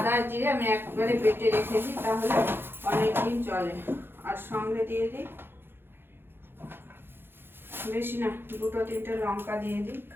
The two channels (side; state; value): left; late; 0.10 ms